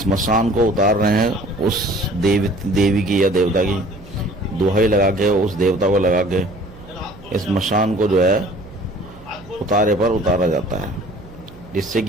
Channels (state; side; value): noise; right; hum, 20 dB below the sound